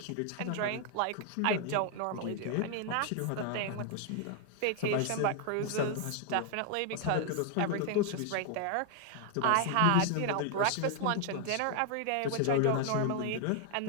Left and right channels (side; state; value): both; different; correlation 0.00